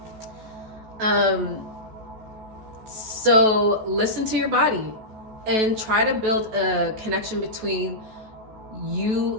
So listen to your body and try to build a connection between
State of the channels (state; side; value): late; left; 14 ms